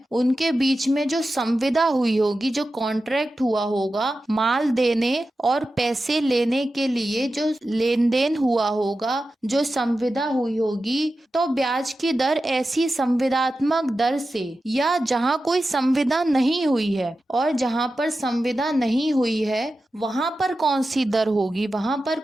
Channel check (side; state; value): both; normal; correlation 0.92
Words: उनके बीच में जो संविदा हुई होगी, जो कॉन्ट्रैक्ट हुआ होगा, माल देने और पैसे लेने के लिए जो लेन देन हुआ होगा, जो संविदा हुई होगी, तो ब्याज की दर ऐसी संविदात्मक दर से या जहां कोई संविदा नहीं हुई है, और जहां पर संविदा नहीं हुई है वहां पर कौन सी दर होगी, वहां पर